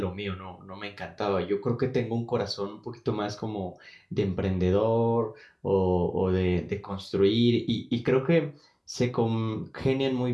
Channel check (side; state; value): both; identical; correlation 1.00